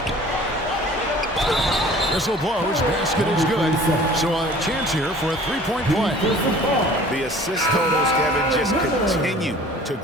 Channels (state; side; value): normal; both; correlation 0.48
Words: Whistle blows. Basket is good. So a chance here for a 3-point play. The assist totals, Kevin, just continue to